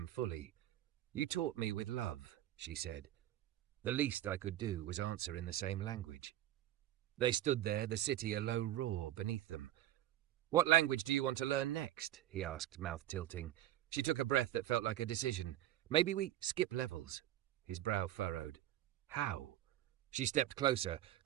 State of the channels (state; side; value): quieter; left; 13.0 dB